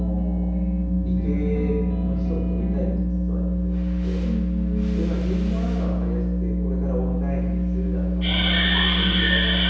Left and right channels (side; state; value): both; identical; correlation 1.00